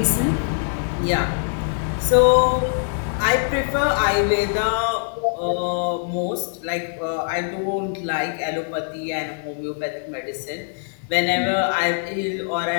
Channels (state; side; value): silent; right; digital silence